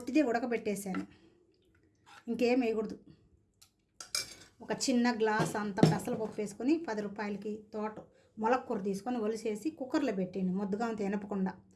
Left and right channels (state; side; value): identical; both; correlation 1.00